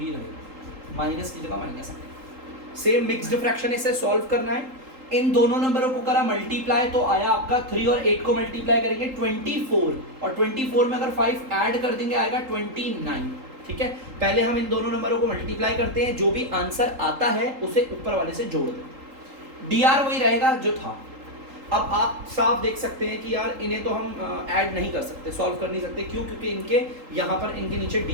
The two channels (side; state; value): left; late; 3.8 ms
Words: रहेगा, माइनस की जगह माइनस आएगा। सेम मिक्स्ड फ्रैक्शन इसे सॉल्व करना है। इन दोनों नंबरों को करा मल्टीप्लाई तो आया आपका 3 और 8 को मल्टीप्लाई करेंगे 24, और 24 में अगर 5 ऐड कर देंगे आएगा 29। ठीक है, पहले हम इन दोनों नंबरों को मल्टीप्लाई करते हैं, जो भी आंसर आता है उसे ऊपर वाले से जोड़ दें। डीआर वही रहेगा जो था। अब आप साफ देख सकते हैं कि यार इन्हें तो हम ऐड नहीं कर सकते, सॉल्व कर नहीं सकते, क्यों? क्योंकि इनके यहाँ पर इनके नीचे